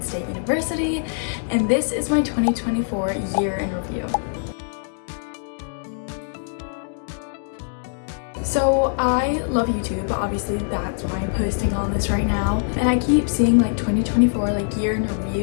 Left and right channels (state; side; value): silent; right; digital silence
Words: State University, and this is my 2024 year in review. So I love YouTube, obviously that's why I'm posting on this right now, and I keep seeing like 2024 like year in